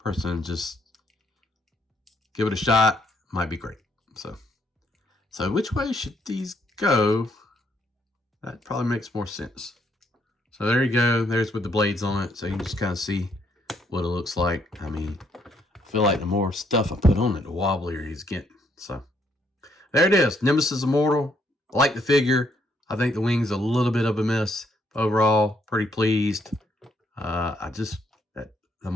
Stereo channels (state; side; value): normal; both; correlation 0.71